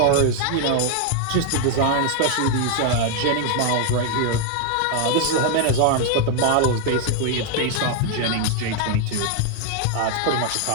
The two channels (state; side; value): different; both; correlation 0.00